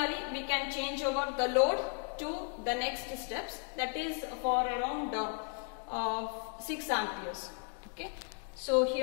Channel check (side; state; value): right; quieter; 38.6 dB